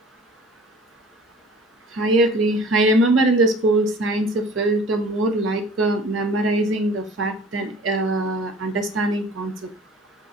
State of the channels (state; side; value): normal; both; correlation 0.47